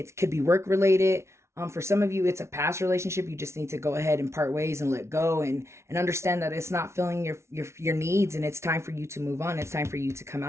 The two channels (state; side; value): late; left; 0.13 ms